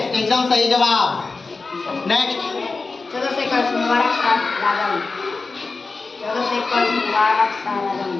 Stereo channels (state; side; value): quieter; right; 4.0 dB